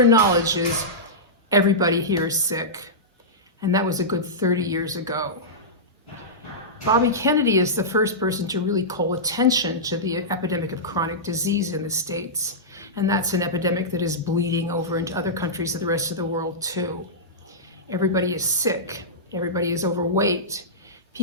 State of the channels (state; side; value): normal; both; correlation -0.14